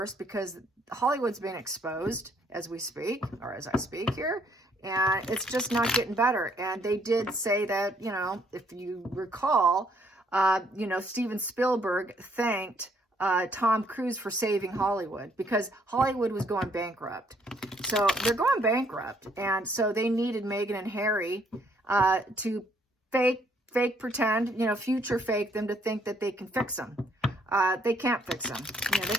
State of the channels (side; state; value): both; normal; correlation 0.67